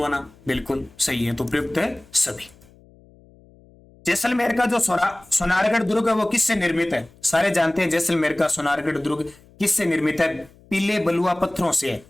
बिल्कुल सही है, तो प्रयुक्त है सभी। जैसलमेर का जो सोनारगढ़ दुर्ग है वो किससे निर्मित है? सारे जानते हैं जैसलमेर का सोनारगढ़ दुर्ग किससे निर्मित है? पीले बलुआ पत्थरों से है।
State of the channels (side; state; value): left; noise; hum, 27 dB below the sound